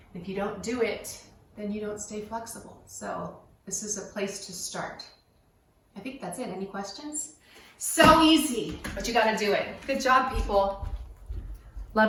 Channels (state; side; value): identical; both; correlation 1.00